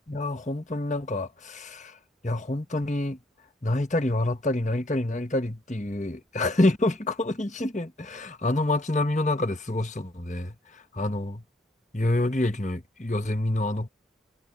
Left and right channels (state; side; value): normal; both; correlation 0.69